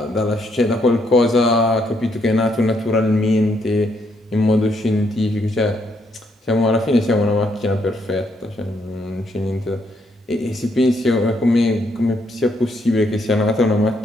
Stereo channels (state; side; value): normal; both; correlation 0.74